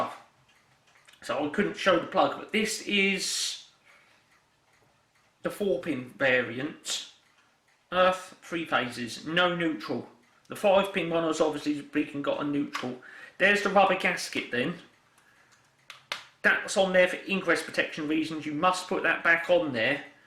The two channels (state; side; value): identical; both; correlation 1.00